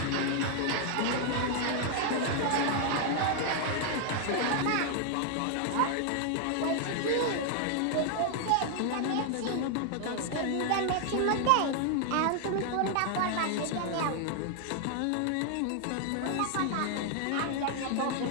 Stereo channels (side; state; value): both; different; correlation 0.00